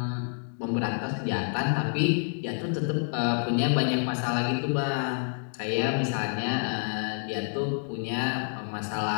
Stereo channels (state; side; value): silent; right; 59 dB below the other